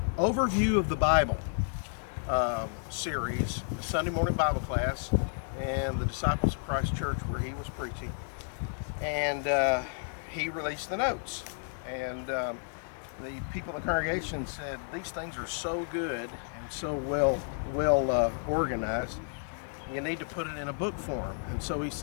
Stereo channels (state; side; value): silent; right; digital silence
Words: of the Bible series, a Sunday morning Bible class, and the Disciples of Christ Church where he was preaching, and he released the notes, and the people in the congregation said these things are so good and so well organized, you need to put it in a book form. And so he